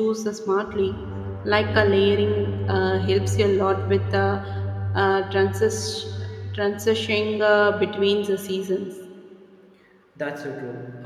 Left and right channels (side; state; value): both; identical; correlation 1.00